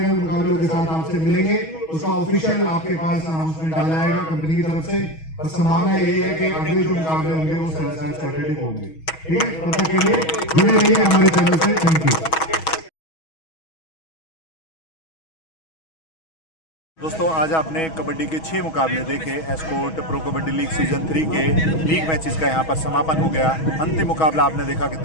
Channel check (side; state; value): right; late; 6.2 ms